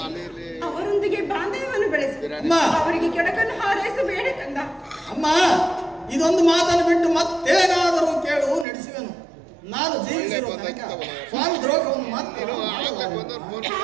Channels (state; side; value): drops out; left; at 8.7 s